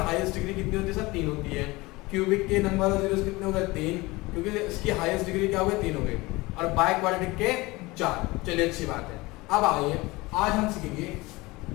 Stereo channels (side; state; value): right; quieter; 22.1 dB